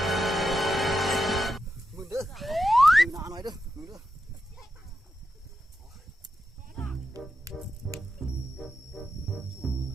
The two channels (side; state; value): both; normal; correlation 0.87